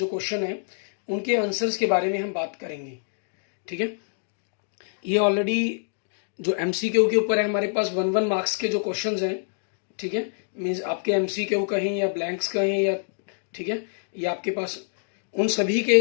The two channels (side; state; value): right; silent; digital silence